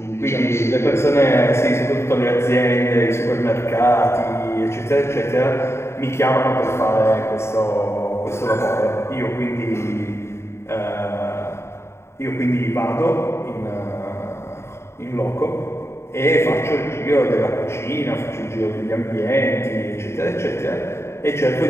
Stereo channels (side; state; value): right; late; 0.13 ms